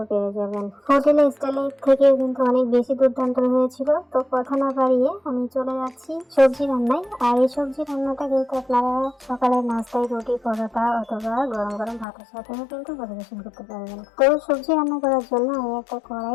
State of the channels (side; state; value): right; drops out; at 12.1 s